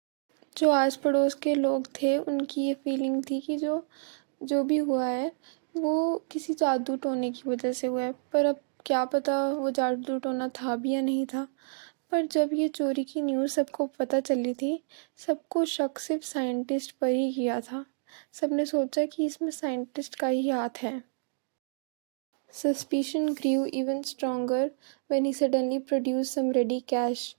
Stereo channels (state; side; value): silent; left; digital silence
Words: जो आस पड़ोस के लोग थे उनकी ये feeling थी कि जो भी हुआ है वो किसी जादू टोने की वजह से हुआ है, पर अब क्या पता वो जादू टोना था भी या नहीं था। पर जब ये चोरी की न्यूज़ सबको पता चली थी, सबको शक सिर्फ साइंटिस्ट पर ही किया था। सबने सोचा कि इसमें साइंटिस्ट का ही हाथ है। Suspicion grew even stronger when he suddenly produced some ready cash,